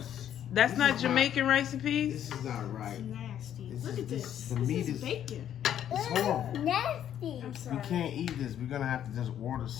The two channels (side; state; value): right; quieter; 10.3 dB